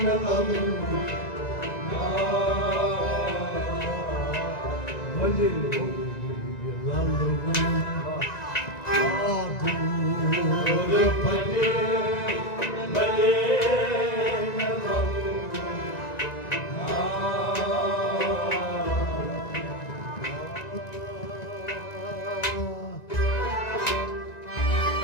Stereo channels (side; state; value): right; late; 1.9 ms